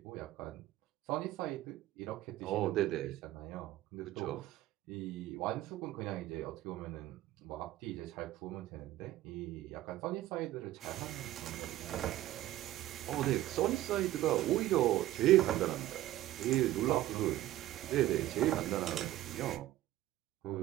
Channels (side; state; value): left; quieter; 15.0 dB